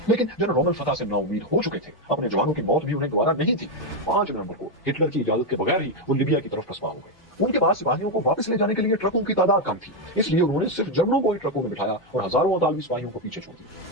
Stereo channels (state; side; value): late; right; 1.2 ms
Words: लेकिन जनरल रोमल फतह से नाउमीद हो चुके थे, अपने जवानों की मौत भी उन्हें गवारा नहीं थी। 5 नवंबर को हिटलर की इजाजत के बगैर ही वो लिबिया की तरफ पसपा हो गए। उनके पास सिपाहियों को वापस ले जाने के लिए ट्रकों की तादाद कम थी, इसलिए उन्होंने सिर्फ जर्मनों को ही ट्रकों में बिठाया और हजारों अतालवी सिपाहियों को पीछे छोड़